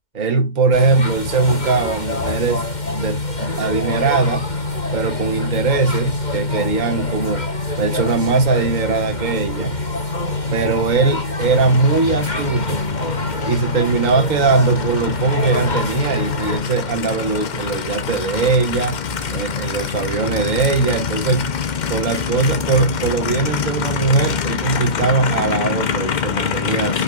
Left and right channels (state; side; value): late; right; 2.1 ms